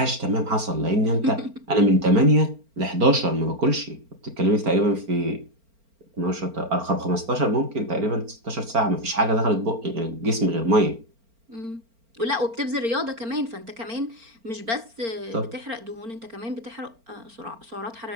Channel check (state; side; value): late; left; 4.4 ms